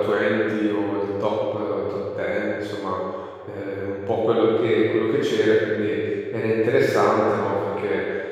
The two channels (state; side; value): identical; both; correlation 1.00